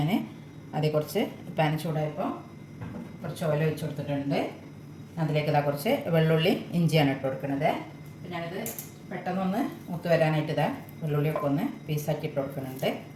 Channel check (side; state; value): both; identical; correlation 1.00